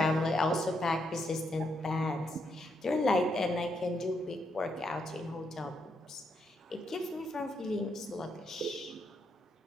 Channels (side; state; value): both; normal; correlation 0.79